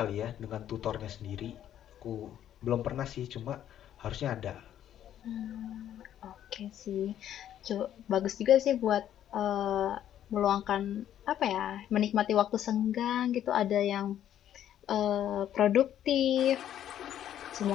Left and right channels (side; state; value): right; quieter; 10.9 dB